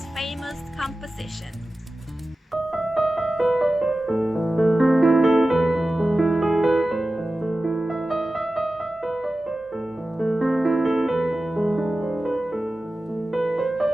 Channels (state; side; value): normal; both; correlation 0.95